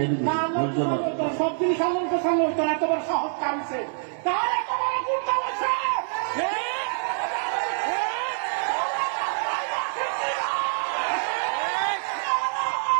দিন, ধৈর্য ধরুন। সব জিনিস আনন্দ সামনে হইতো না, এতবার সাহস কামছে, তার এতবার গুরুত্ব হয়েছে।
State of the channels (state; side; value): silent; left; digital silence